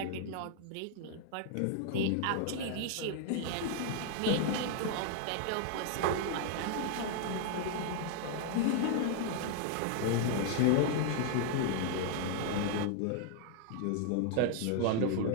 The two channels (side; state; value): both; different; correlation 0.00